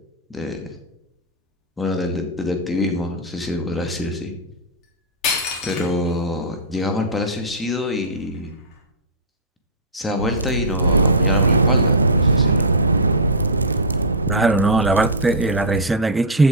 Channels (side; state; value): both; normal; correlation -0.12